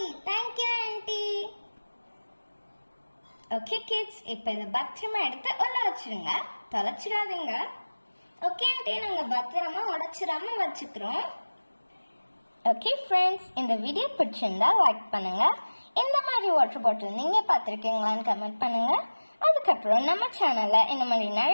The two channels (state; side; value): inverted; both; correlation -1.00